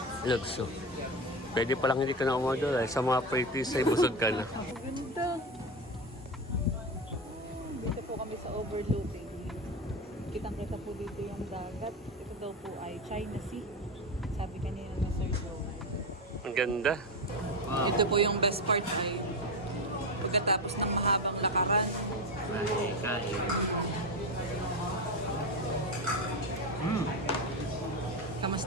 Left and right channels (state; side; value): normal; both; correlation 0.17